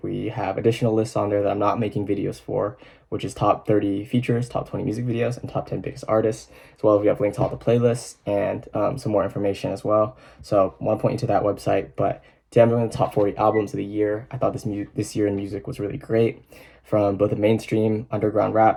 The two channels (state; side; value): identical; both; correlation 1.00